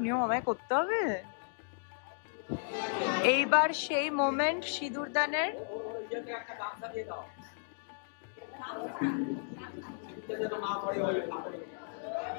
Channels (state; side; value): silent; right; digital silence